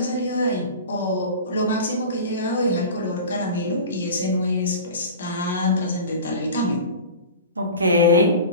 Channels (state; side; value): inverted; both; correlation -0.34